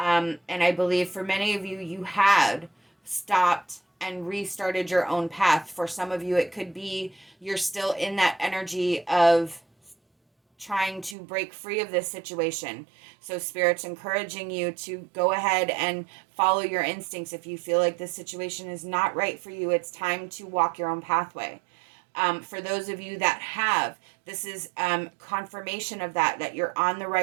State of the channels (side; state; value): left; drops out; at 11.2 s